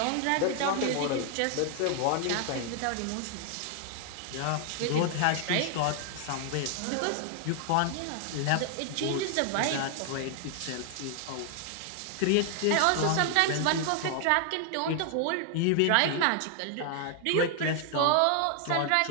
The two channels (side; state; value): both; different; correlation 0.00